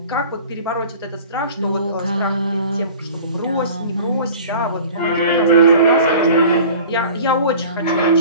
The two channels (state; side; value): inverted; both; correlation -0.43